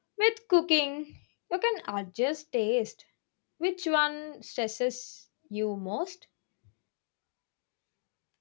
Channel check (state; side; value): silent; right; digital silence